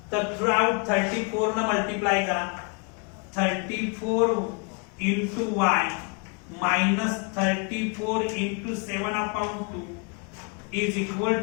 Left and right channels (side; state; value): right; quieter; 35.0 dB